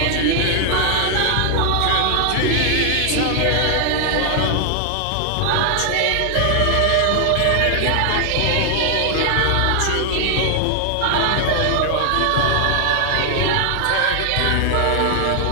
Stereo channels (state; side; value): different; both; correlation 0.00